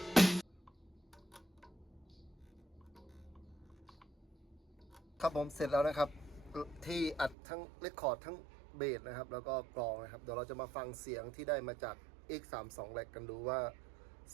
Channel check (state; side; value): drops out; left; at 7.4 s